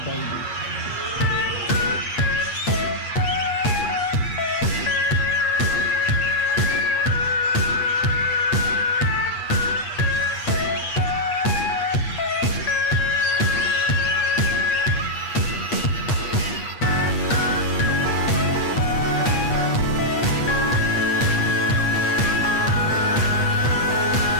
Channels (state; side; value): late; right; 8.4 ms